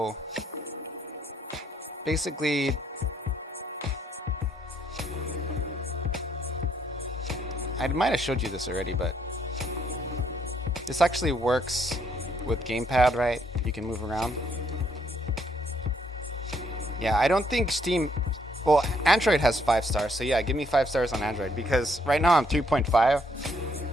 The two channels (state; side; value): normal; both; correlation 0.70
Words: basically, I might have showed you this already, but this actually works with gamepad, right? You can move around. Yeah, I don't think Steam... Well, Android has 5 stars, so yeah, give me 5 stars on Android, because right now I'm 3.5.